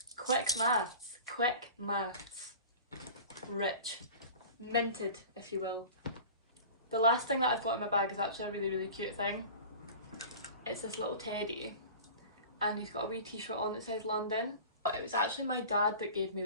Quick maths, quick maths. Rich. Minted, if you will. The last thing that I've got in my bag is actually a really cute thing. It's this little teddy and he's got a wee t-shirt on that says London. But it was actually my dad that gave me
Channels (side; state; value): both; inverted; correlation -0.38